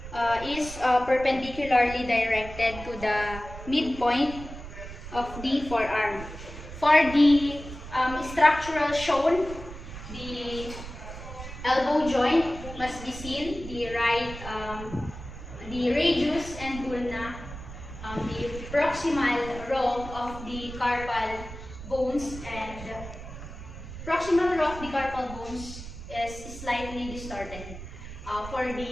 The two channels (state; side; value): noise; right; rumble, 12 dB below the sound